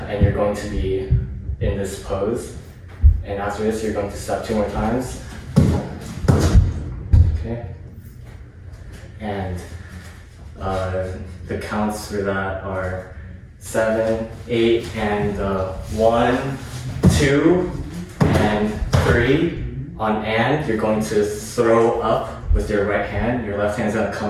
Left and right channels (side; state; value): both; identical; correlation 1.00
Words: and you're going to be in this pose. And after this, you're going to step 2 more times. Okay. And the counts for that are 7, 8, and 1, 2, and 3. On and, you're going to throw up with your right hand. Your left hand's gonna